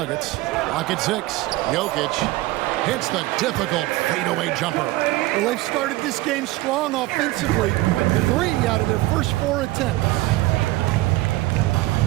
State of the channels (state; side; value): quieter; left; 18.6 dB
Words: Rocket 6. Jokic hits the difficult fadeaway jumper. Well, they've started this game strong offensively. 3 out of their first 4 attempts.